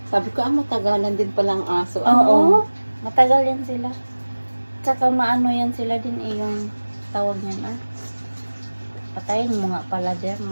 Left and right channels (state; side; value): inverted; both; correlation -1.00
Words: Sabi ko, matagalan din palang aso. Oo. Matagal yan sila. Tsaka maano yan sila din yung tawag niyan Patayin mo nga pala dyan.